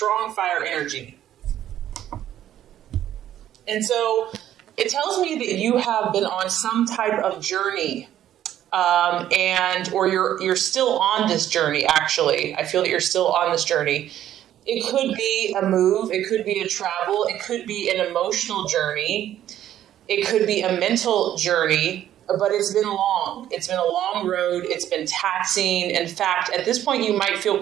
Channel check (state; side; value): quieter; left; 11.7 dB